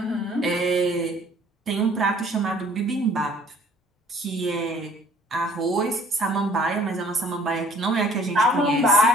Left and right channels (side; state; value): both; normal; correlation 0.57